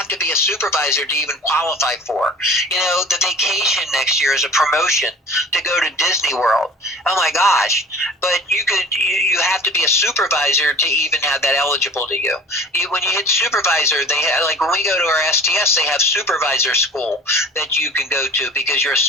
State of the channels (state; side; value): normal; both; correlation 0.44